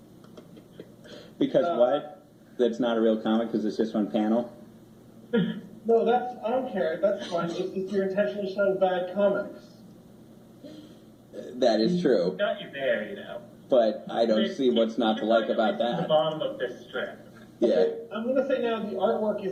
Because what? That's not a real comic because it's just one panel? No, I don't care. That's fine. It's just you're intentionally showing bad comics. That is true. Got you there, you know. But I don't see what's not to like about The that. bottom of this strip. Yeah. I'm going to say now the artwork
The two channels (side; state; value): both; identical; correlation 1.00